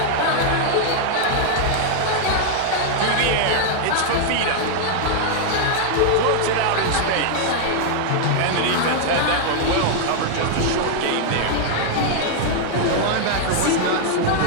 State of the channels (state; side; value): different; both; correlation 0.00